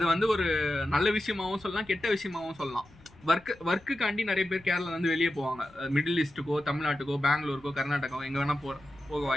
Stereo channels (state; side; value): noise; left; rumble, 25 dB below the sound